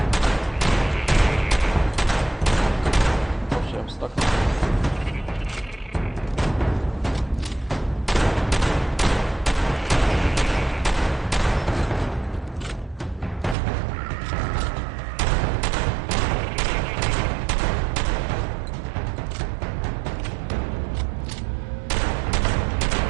Oh shit, I'm stuck.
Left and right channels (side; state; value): left; drops out; at 13.6 s